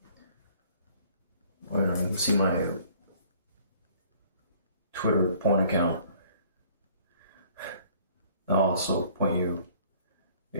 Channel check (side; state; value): both; inverted; correlation -0.57